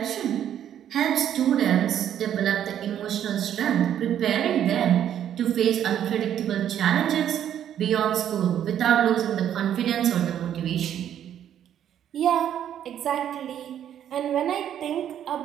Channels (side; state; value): left; quieter; 10.2 dB